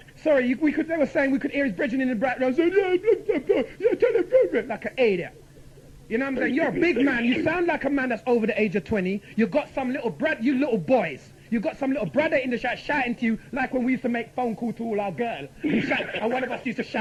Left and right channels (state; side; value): identical; both; correlation 1.00